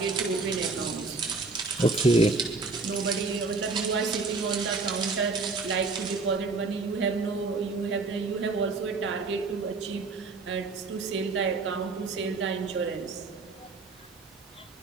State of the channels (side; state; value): left; quieter; 3.9 dB